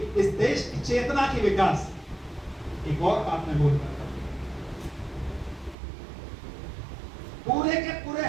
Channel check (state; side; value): drops out; left; at 5.8 s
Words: इस देश की चेतना की विकास। एक और बात मैं बोल रहा था, पूरे के पूरे